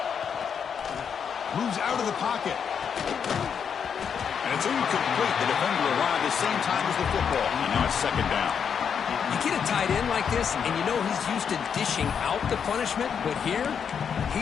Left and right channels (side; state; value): right; quieter; 7.2 dB